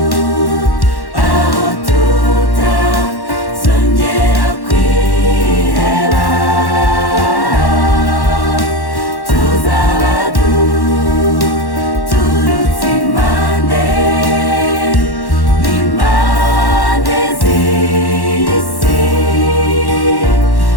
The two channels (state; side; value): late; right; 1.1 ms